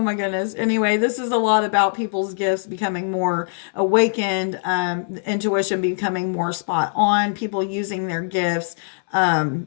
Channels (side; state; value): right; silent; 64 dB below the other